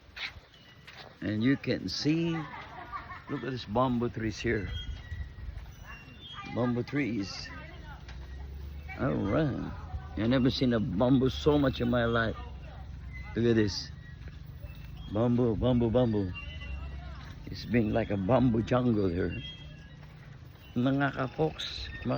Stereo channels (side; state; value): both; identical; correlation 1.00